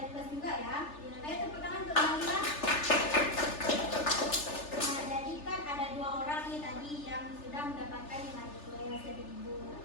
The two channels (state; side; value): late; right; 3.4 ms